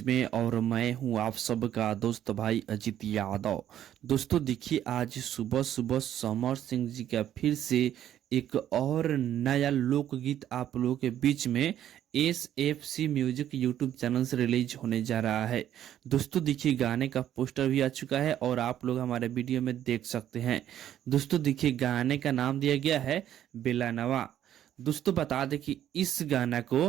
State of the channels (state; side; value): quieter; left; 11.1 dB